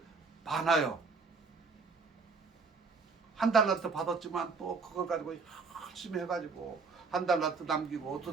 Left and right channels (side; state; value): left; quieter; 4.5 dB